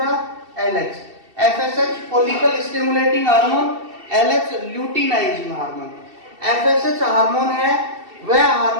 LH. FSH follicle stimulating hormone, LH luteinizing hormone. FSH hormone है वह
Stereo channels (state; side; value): late; left; 2.7 ms